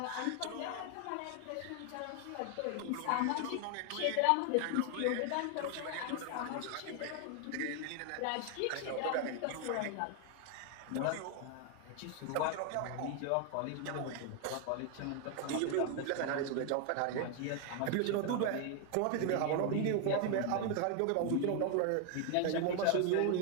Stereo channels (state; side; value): different; both; correlation 0.00